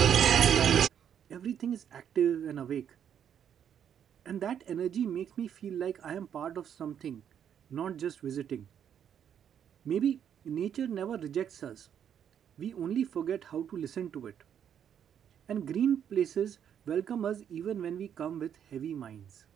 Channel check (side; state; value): left; quieter; 8.9 dB